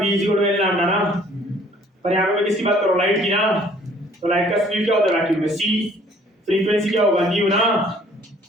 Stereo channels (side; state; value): both; normal; correlation 0.57